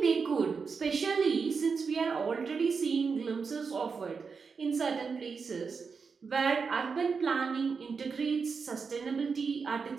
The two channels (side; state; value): left; quieter; 5.3 dB